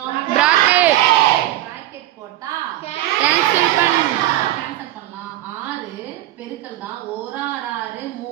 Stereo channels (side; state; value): left; quieter; 14.7 dB